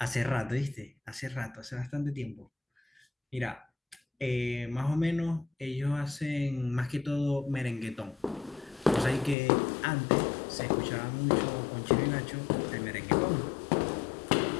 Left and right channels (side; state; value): right; drops out; at 9.3 s